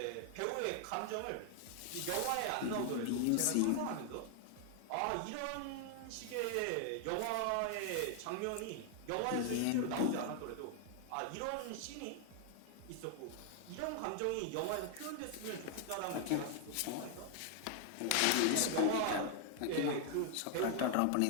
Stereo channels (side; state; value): both; different; correlation 0.00